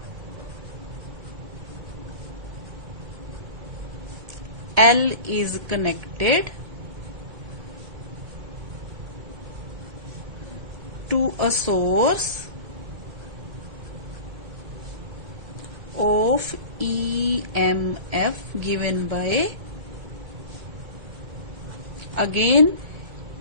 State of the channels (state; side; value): late; left; 2.2 ms